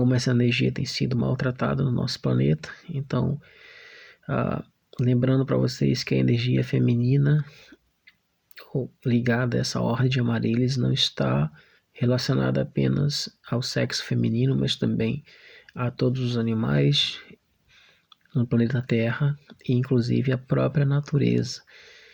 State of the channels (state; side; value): identical; both; correlation 1.00